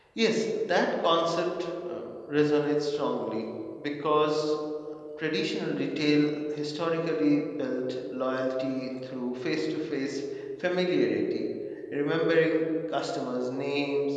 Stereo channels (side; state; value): both; identical; correlation 1.00